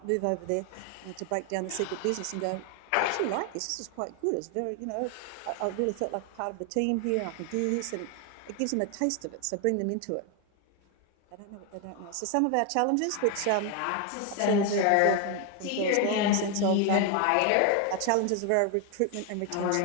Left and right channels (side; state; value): both; different; correlation 0.01